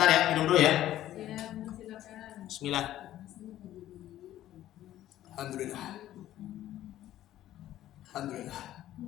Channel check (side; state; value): right; quieter; 13.2 dB